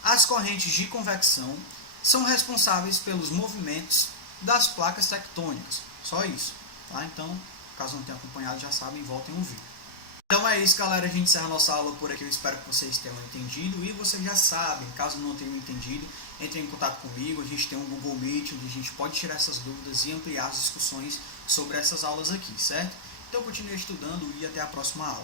As correntes de convecção são responsáveis pelos movimentos das placas tectônicas. Só isso, tá? Então, caso não tenham acompanhado, já sabem, voltem a ouvir. Então é isso, galera, a gente encerra a nossa aula por aqui, eu espero que vocês tenham entendido, e vocês já sabem, caso não tenham entendido, entrem em contato comigo, a gente tem um Google Meet, onde a gente pode tirar essas dúvidas e ampliar as discussões sobre essas aulas aqui, certo? Então continue estudando e até a próxima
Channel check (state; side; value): late; right; 1.1 ms